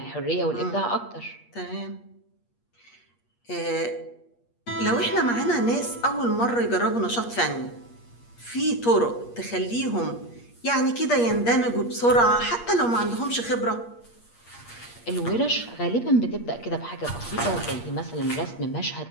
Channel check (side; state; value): right; late; 8.5 ms